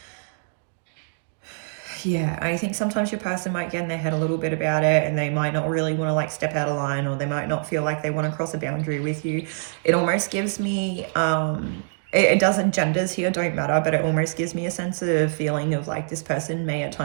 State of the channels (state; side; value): silent; left; digital silence